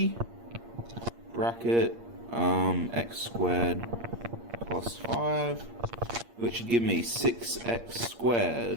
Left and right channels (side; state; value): left; late; 8.6 ms